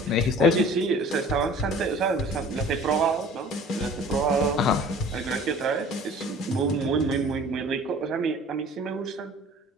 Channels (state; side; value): normal; both; correlation 0.47